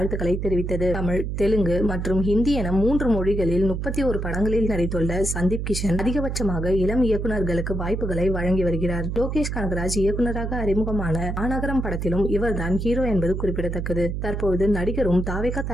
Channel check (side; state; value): right; noise; hum, 3 dB below the sound